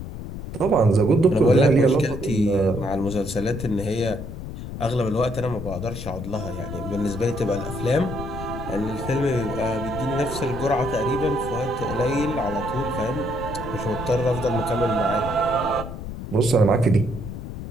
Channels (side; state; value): left; noise; rumble, 8 dB below the sound